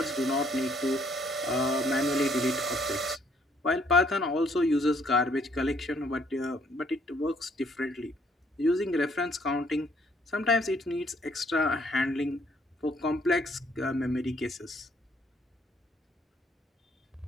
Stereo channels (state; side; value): normal; both; correlation 0.66